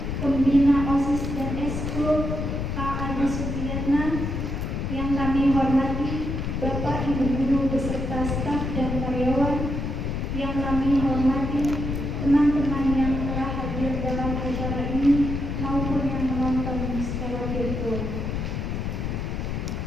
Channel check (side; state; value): left; noise; rumble, 3 dB below the sound